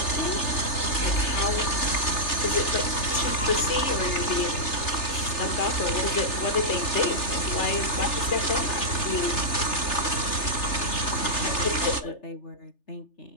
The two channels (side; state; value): right; late; 3.3 ms